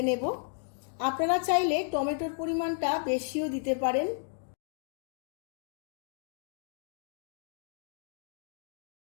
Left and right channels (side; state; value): right; silent; digital silence